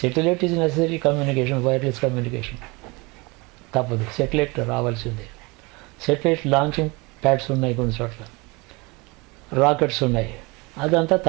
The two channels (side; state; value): left; quieter; 25.9 dB